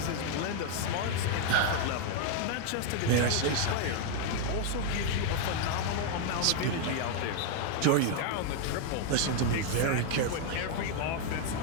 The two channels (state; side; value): different; both; correlation 0.00